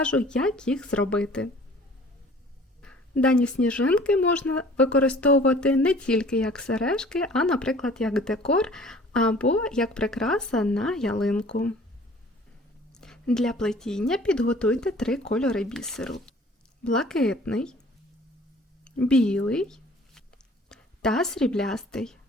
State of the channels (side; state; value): both; normal; correlation 0.50